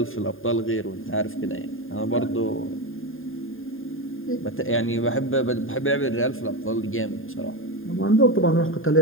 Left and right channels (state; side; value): late; right; 0.59 ms